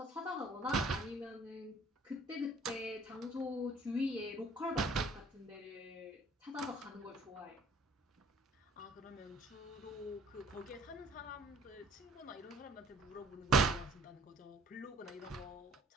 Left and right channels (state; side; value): normal; both; correlation 0.57